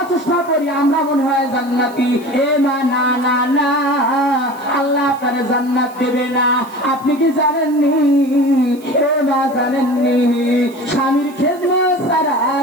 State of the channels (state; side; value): noise; right; hiss, 24 dB below the sound